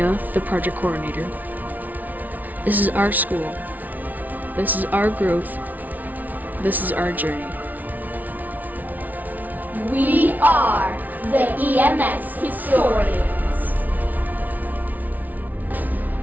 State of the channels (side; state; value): left; late; 0.077 ms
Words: the project coordinator. This is our school. This is our growth. This is our journey. We are the EMS Historians.